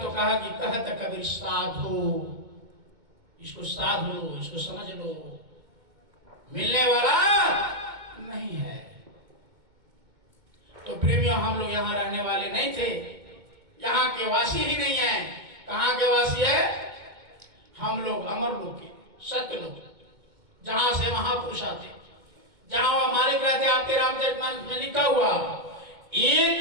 कहा कि कहत कबीर साधो, इसको साध लो, इसको समझ लो, मिलने वाला नहीं है। तो प्रेमियों, हम लोग यहाँ रहने वाले नहीं थे, यहाँ के वासी ही नहीं है। कहाँ के वासी है? हम लोग अमर लोग के, सत्य लोग, जहां से महापुरुष आते, जहां वह मालिक रहते। आपके रामचरितमानस में लिखा हुआ,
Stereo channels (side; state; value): left; late; 2.1 ms